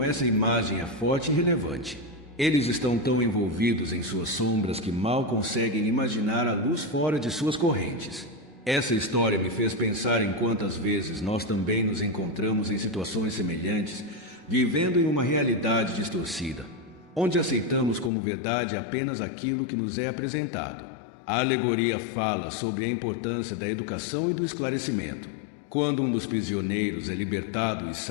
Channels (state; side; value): drops out; right; at 18.1 s